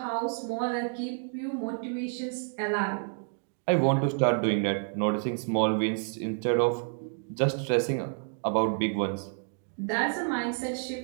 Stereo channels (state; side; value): silent; left; 58 dB below the other